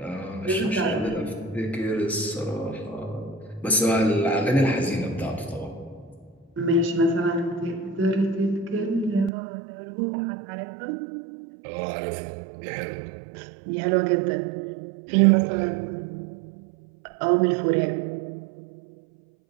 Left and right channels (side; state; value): left; drops out; at 9.3 s